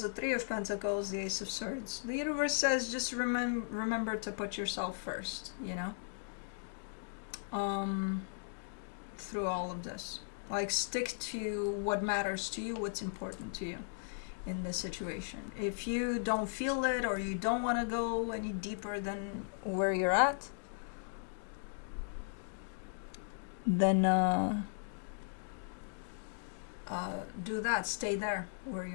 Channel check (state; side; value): silent; right; digital silence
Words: the Three of Pentacles, the Ace of Swords. The universe says just remember to put yourself first, you know? through all of this. Like, stick to what matters to you, what's important to you in this situation. If you don't feel it or you don't want to go any deeper than where you're at, then do that. Stay there where